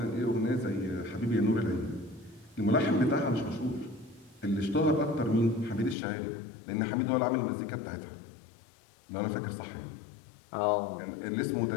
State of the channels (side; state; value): right; drops out; at 6.0 s